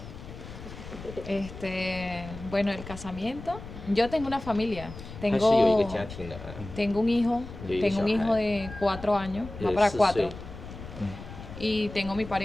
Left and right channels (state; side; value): noise; left; rumble, 13 dB below the sound